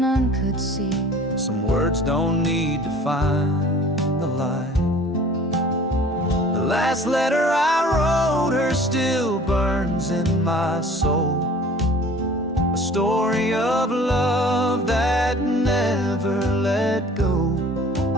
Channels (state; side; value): normal; both; correlation 0.48